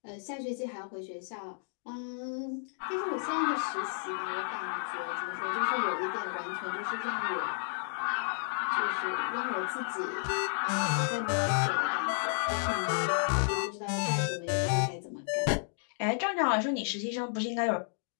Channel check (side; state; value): right; silent; digital silence